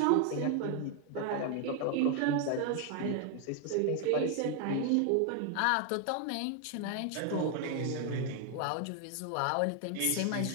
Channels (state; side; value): different; both; correlation 0.00